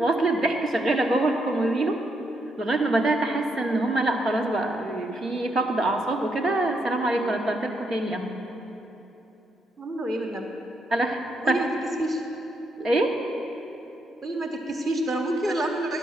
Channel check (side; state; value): both; normal; correlation 0.78